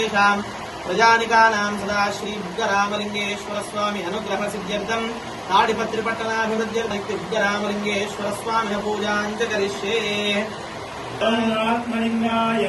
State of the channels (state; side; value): identical; both; correlation 1.00